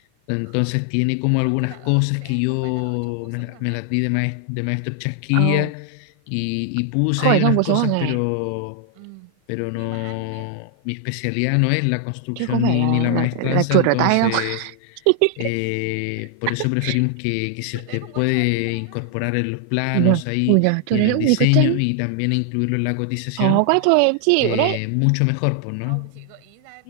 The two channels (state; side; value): different; both; correlation 0.00